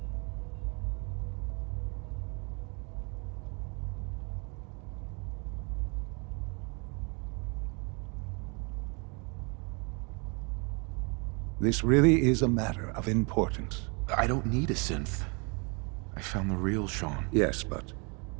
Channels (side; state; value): left; quieter; 33.1 dB